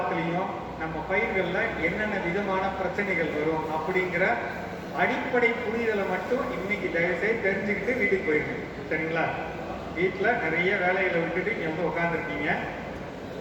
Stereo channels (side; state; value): both; identical; correlation 1.00